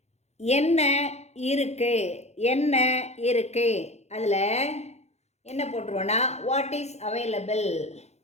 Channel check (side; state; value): right; late; 0.32 ms